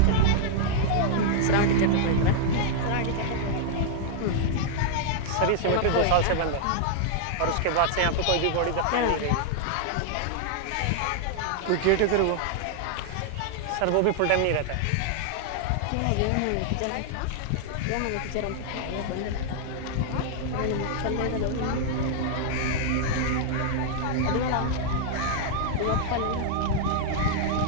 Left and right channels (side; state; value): both; different; correlation -0.01